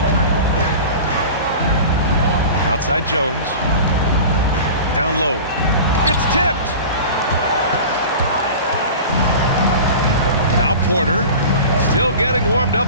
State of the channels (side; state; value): both; inverted; correlation -0.36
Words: Outside Jones. Down low. It's tipped. Now Porter. Still getting warmed up